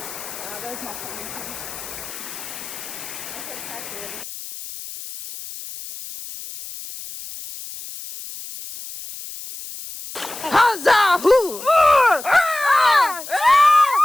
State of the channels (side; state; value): left; noise; hiss, 12 dB below the sound